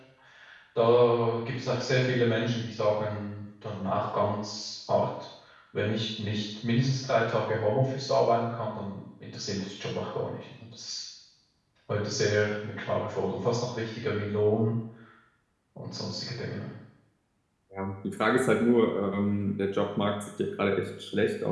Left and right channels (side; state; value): both; identical; correlation 1.00